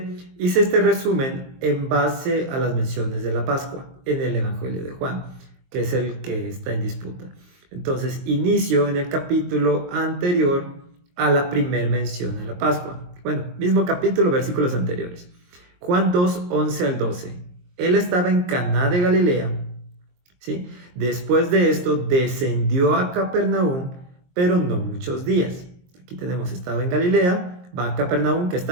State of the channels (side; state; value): left; late; 23 ms